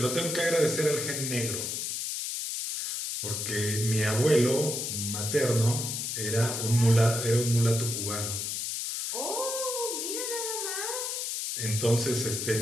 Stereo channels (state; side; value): noise; left; hiss, 2 dB below the sound